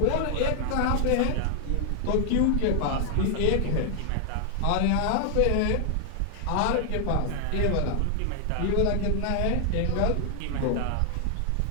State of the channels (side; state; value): both; different; correlation 0.00